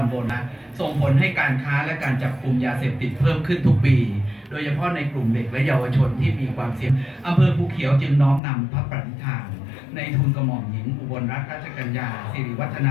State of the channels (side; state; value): right; drops out; at 8.4 s